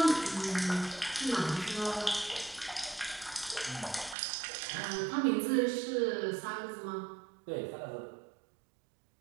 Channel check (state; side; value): drops out; left; at 4.2 s